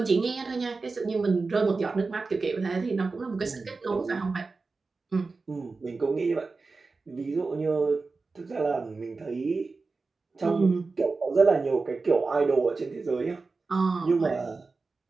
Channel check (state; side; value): quieter; left; 4.0 dB